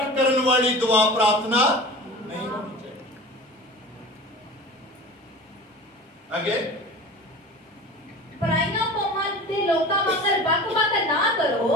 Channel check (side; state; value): both; normal; correlation 0.36